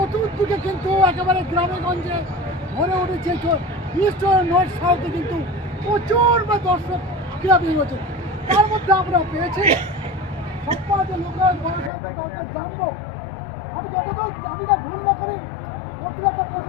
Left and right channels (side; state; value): right; drops out; at 11.9 s